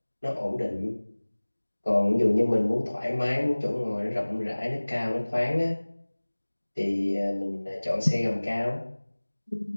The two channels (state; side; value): inverted; both; correlation -1.00